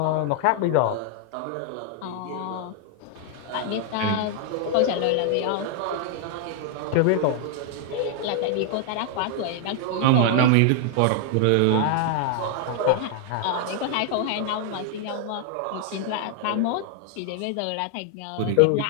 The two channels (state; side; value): different; both; correlation 0.00